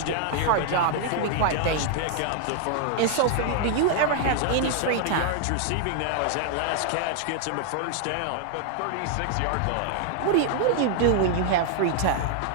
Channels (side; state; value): both; different; correlation -0.01